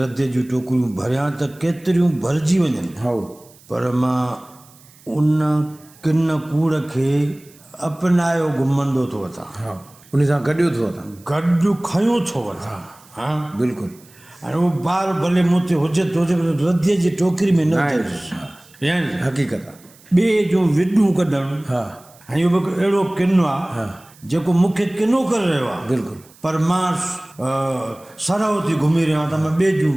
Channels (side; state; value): right; noise; hiss, 26 dB below the sound